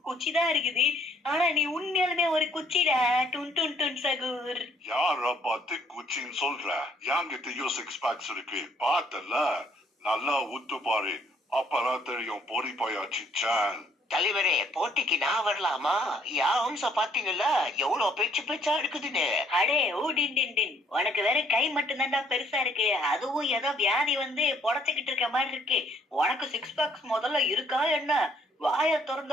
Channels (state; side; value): normal; both; correlation 0.65